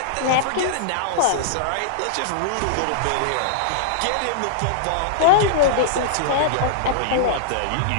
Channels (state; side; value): different; both; correlation -0.02